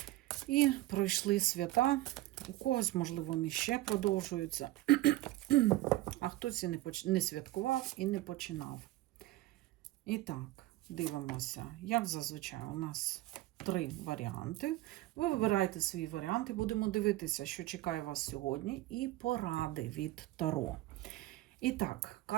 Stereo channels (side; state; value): left; quieter; 17.1 dB